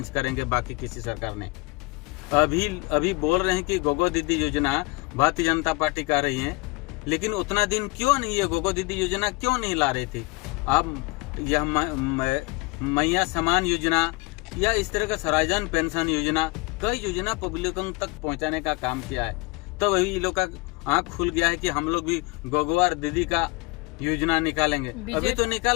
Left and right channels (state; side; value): quieter; right; 25.9 dB